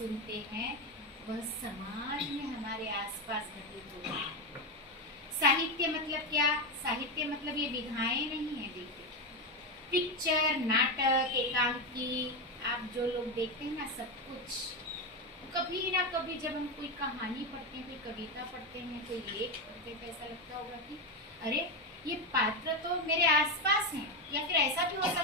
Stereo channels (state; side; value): normal; both; correlation 0.11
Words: हैं वह समाज में हमारे आसपास घटित होता है। साहित्य मतलब क्या? साहित्य मतलब ये विधाएं नहीं है। देखिए, पिक्चर, नाटक, एकांकी, आप जो लोग देखते हैं ना, सब कुछ कभी ना कभी जब हम कोई कहानी पढ़ते हैं, कोई कविता पढ़ते हैं, कोई लेख पढ़ते हैं, तो ऐसा लगता होगा कि अरे ये पात्र तो मेरे आसपास हैं, या फिर ऐसा भी हो